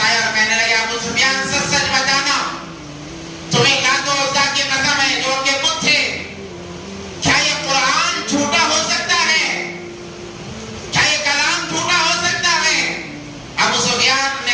آئے اور کہنے لگے ابو سفیان سچ سچ بتانا, تمہیں لات و عزا کی قسم ہے جو کہ بت تھے, کیا یہ قرآن جھوٹا ہو سکتا ہے, کیا یہ کلام جھوٹا ہو سکتا ہے. ابو سفیان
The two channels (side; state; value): both; identical; correlation 1.00